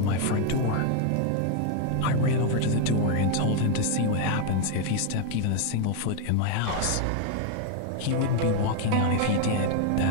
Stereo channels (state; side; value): different; both; correlation 0.01